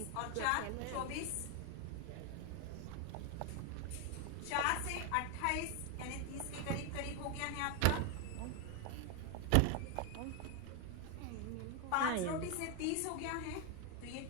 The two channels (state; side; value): different; both; correlation 0.01